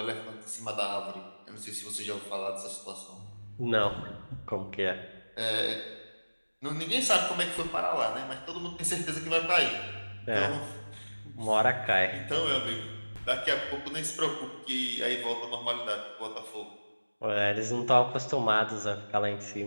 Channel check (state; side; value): inverted; both; correlation -1.00